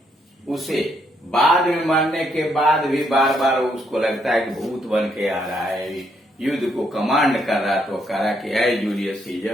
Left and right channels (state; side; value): normal; both; correlation 0.74